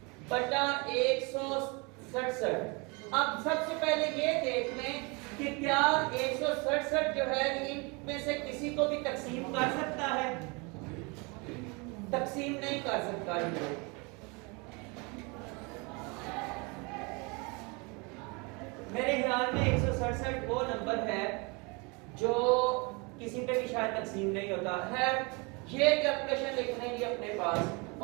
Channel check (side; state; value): left; quieter; 29.4 dB